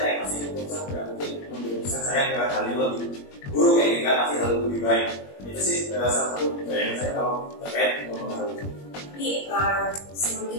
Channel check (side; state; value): right; late; 21 ms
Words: pasti keputusan tidak mungkin mengambil keputusan saya ke hal yang lebih buruk kayak ini kan, pasti hal lebih baik. Itu sih salah satu yang saya tahu terkait mempengaruhi. Jadi sebelum